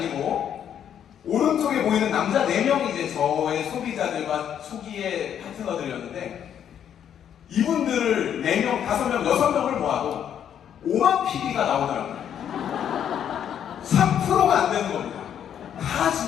오른쪽에 보이는 남자 4명이 이제 저의 소비자들과 초기의 파트너들이었는데 이분들을 4명, 5명, 6명을 모아도 5만 PB가 나오더라고요. 3%가 안 되는 겁니다. 다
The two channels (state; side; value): quieter; right; 9.3 dB